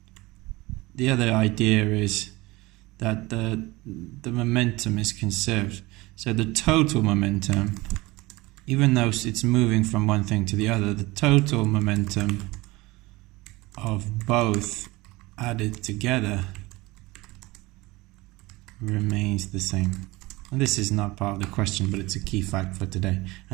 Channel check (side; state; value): left; quieter; 21.4 dB